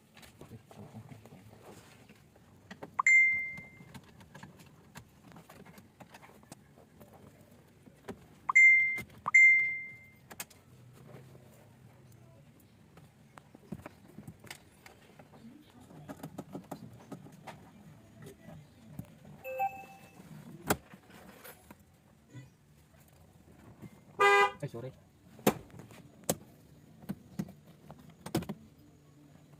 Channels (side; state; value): both; identical; correlation 1.00